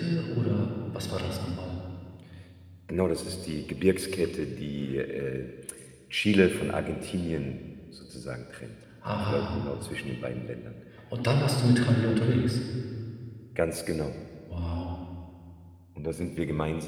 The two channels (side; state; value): both; identical; correlation 1.00